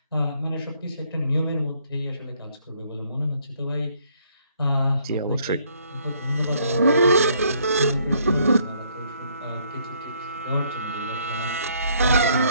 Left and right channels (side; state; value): both; inverted; correlation -0.66